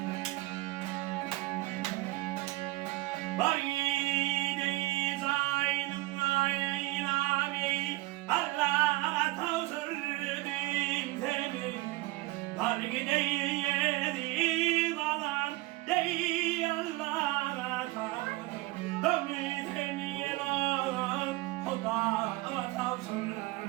Bari dey zaynım naylani Allah tavsırdım seni Bari dey yedim alan dey Allah'a tavsırdım seni Huda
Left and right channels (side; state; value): left; quieter; 19.8 dB